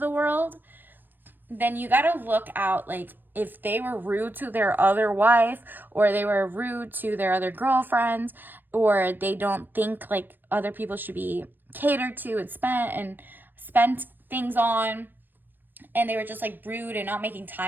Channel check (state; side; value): late; left; 0.093 ms